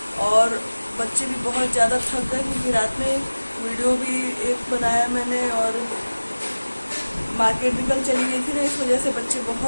और बच्चे भी बहुत ज़्यादा थक गए क्योंकि रात में वीडियो भी एक बनाया मैंने और मार्केट भी कल चली गई थी ना, इस वजह से बच्चे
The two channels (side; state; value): both; inverted; correlation -1.00